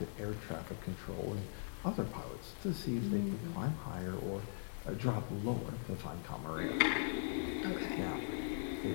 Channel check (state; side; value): silent; right; 51 dB below the other